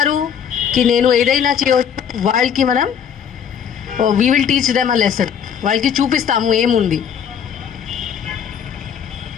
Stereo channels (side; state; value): right; quieter; 8.0 dB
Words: కి నేను ఏదైనా చేయవచ్చు, వాళ్ళకి మనం we will teach them a lesson. వాళ్ళకి చూపిస్తాము ఏముంది.